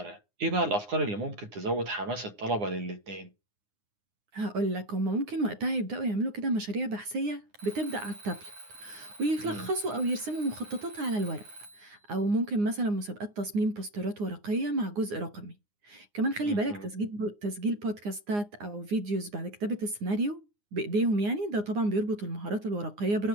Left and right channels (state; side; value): late; left; 9.7 ms